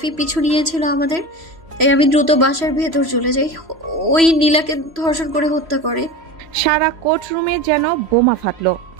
পিছু নিয়েছিল আমাদের, তাই আমি দ্রুত বাসার ভেতর চলে যাই। ওই নীলাকে ধর্ষণ করে হত্যা করে। সারা কোর্টরুমে যেন বোমা ফাটলো।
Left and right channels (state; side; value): late; left; 3.0 ms